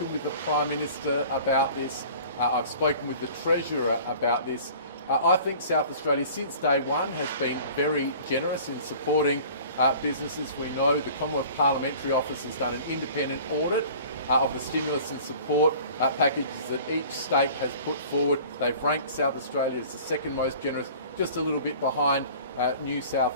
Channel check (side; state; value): both; inverted; correlation -0.45